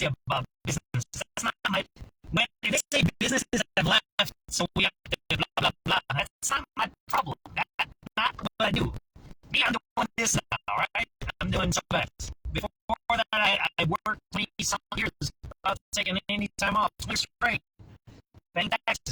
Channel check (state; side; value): identical; both; correlation 1.00